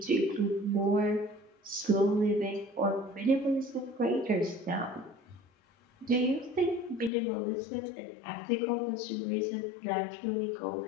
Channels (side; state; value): right; drops out; at 7.1 s